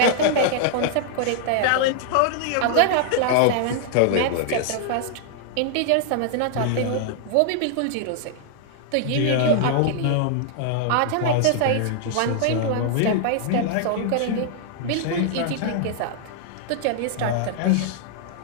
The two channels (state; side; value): different; both; correlation -0.01